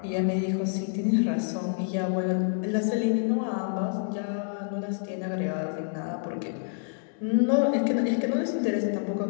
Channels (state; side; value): silent; right; digital silence